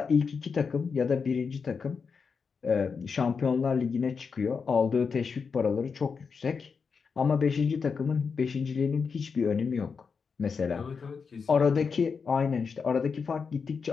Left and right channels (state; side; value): quieter; right; 5.5 dB